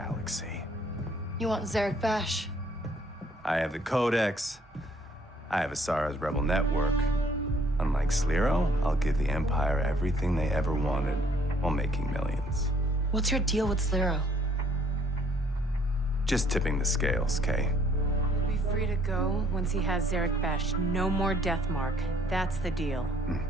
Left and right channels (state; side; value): normal; both; correlation 0.62